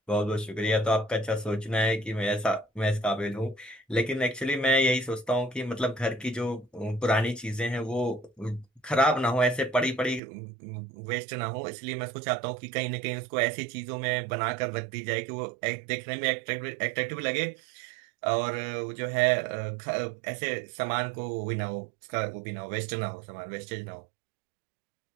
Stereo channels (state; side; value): drops out; left; at 10.2 s